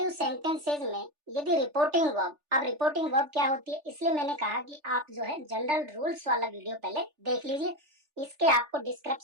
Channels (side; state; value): left; late; 3.4 ms